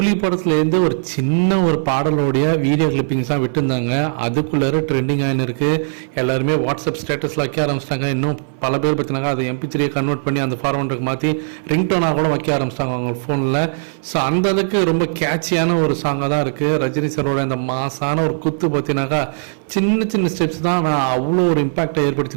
படத்துலேருந்து ஒரு சின்ன ஒரு பாடலோடைய வீடியோ கிளிப்பிங்ஸ் தான் விட்டுருந்தாங்க. அதுக்குள்ளே ட்ரெண்டிங் ஆகின்னு இருக்குது. எல்லாருமே வாட்ஸ்அப் ஸ்டேட்டஸில் வைக்க ஆரம்பிச்சிட்டாங்க. இன்னும் பல பேர் பார்த்தினாங்க அதை MP3 கன்வெர்ட் பண்ணி அந்த ஃபார்மேட்டுக்கு மாற்றி ரிங்டோனாக கூட வைக்க ஆரம்பிச்சிட்டாங்க அவங்க ஃபோனில். ஸோ அந்த அளவுக்கு ரொம்ப கேட்சியான ஒரு சாங்காக தான் இருக்குது. ரஜினி சாரோட இந்த மாசான ஒரு குத்து பார்த்தினாக்கா சின்ன சின்ன ஸ்டெப்ஸ் தான் நான் அவ்வளோ ஒரு இம்பாக்டை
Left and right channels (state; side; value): silent; left; 59 dB below the other